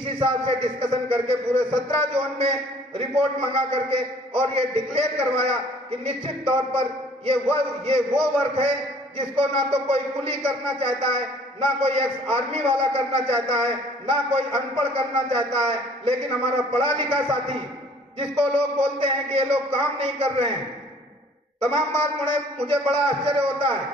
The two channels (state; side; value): normal; both; correlation 0.55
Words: साहब से डिस्कशन करके पूरे 17 जोन में रिपोर्ट मंगा करके और ये डिक्लेयर करवाया कि निश्चित तौर पर ये वो वर्क है जिसको ना तो कोई कुली करना चाहता है, ना कोई एक्स आर्मी वाला करना चाहता है, ना कोई अनपढ़ करना चाहता है, लेकिन हमारा पढ़ा लिखा साथी जिसको लोग बोलते हैं कि ये लोग काम नहीं कर रहे हैं। तमाम बार मुझे बड़ा आश्चर्य होता